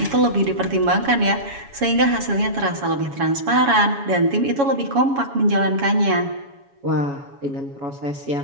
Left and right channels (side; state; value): left; late; 7.2 ms